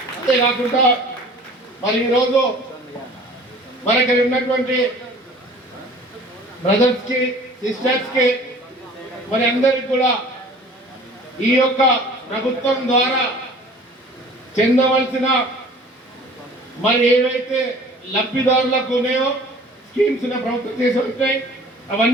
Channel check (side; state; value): both; normal; correlation 0.48